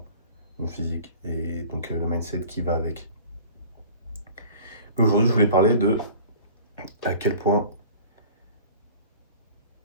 mon physique, et donc le mindset qui va avec. Mais aujourd'hui, je voulais parler de à quel point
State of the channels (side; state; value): both; inverted; correlation -0.44